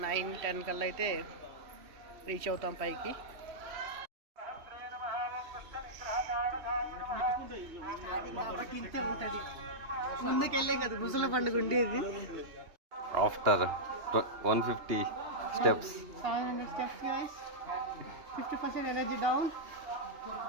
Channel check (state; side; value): late; left; 2.7 ms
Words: 9-10 కల్లా అయితే రీచ్ అవుతాం పైకి. ముందుకెళ్ళే కదా ముసల పండుగ ఉండేది. ఆఫ్టర్ 150 steps 700 steps guys. 50% energy down.